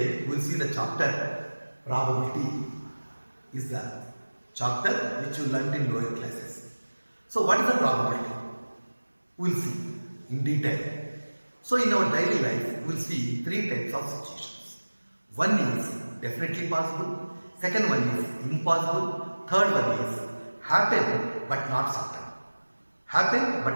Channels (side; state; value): both; inverted; correlation -1.00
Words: we will see the chapter probability is the chapter which you learnt in lower classes. So what is the probability? We will see in detail. So in our daily life we will see three types of situations. One is definitely possible, second one is impossible, third one is happen but not certain. Happen